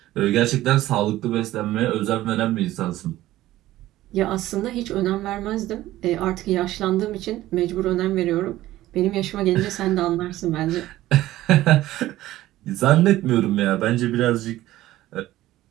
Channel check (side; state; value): left; quieter; 15.4 dB